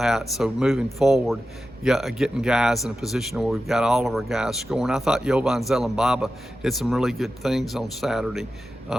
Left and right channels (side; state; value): both; normal; correlation 0.92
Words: So moving forward, getting guys in a position where we've got all of our guys scoring. I thought Jovan Zelembaba did some really good things on Saturday,